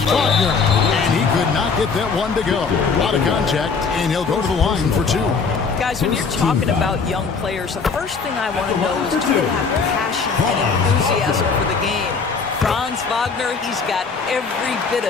Wagner, and he could not get that one to go. A lot of contact, and he'll go to the line for 2. Guys, when you're talking about young players, the first thing I want to know is do they have passion and enthusiasm for the game? Franz Wagner, he's got every bit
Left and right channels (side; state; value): right; quieter; 5.1 dB